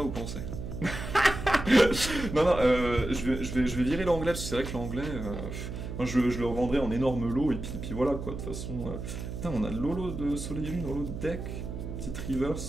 vous pensez? Non, je vais virer l'anglais, parce que c'est vrai que l'anglais... moi, je le revendrai en énorme lot, et puis voilà, quoi, de toute façon... Putain, on a de l'holo de Soleil et Lune, holo de deck... Petite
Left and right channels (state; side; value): noise; right; hum, 7 dB below the sound